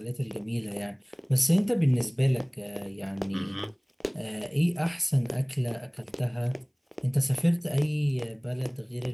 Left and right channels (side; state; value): both; identical; correlation 1.00